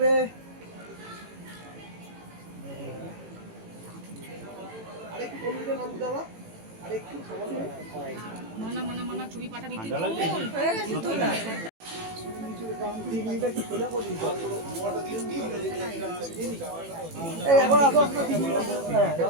আরেকটু কমিয়ে দেন আবু দাদা আরেকটু মানা মানা মানা ছবি পাঠাবি তুই এখন আসো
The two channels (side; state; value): left; late; 18 ms